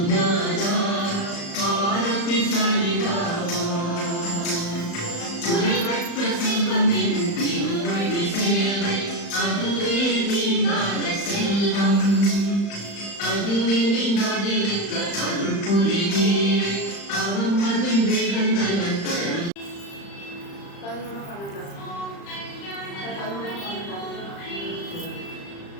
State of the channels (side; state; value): right; late; 35 ms